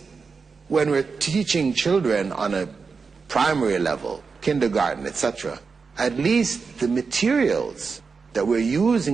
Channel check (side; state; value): left; quieter; 5.0 dB